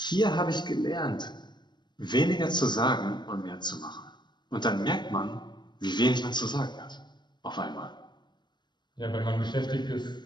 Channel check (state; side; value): late; right; 0.22 ms